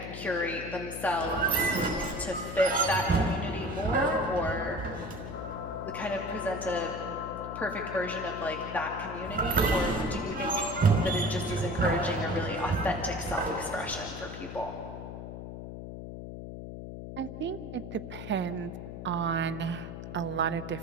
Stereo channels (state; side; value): noise; left; hum, 9 dB below the sound